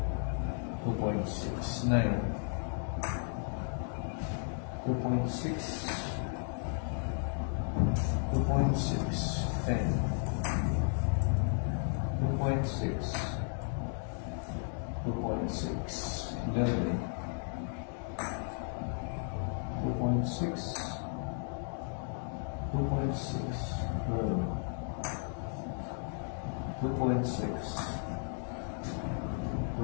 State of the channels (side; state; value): right; silent; 55 dB below the other